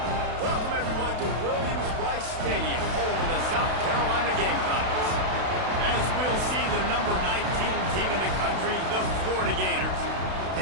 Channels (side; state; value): left; late; 32 ms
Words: Welcome, everyone, to Williams-Brice Stadium, home of the South Carolina Gamecocks. As we'll see the number 19 team in the country, the Florida Gators,